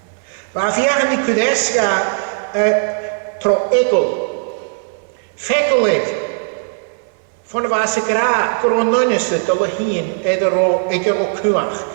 Maar viagen die Kudesga tro ekel. Fekelig. Van de wasse gra, Gro nonneste te heen en de ro kuach.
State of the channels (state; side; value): silent; left; 61 dB below the other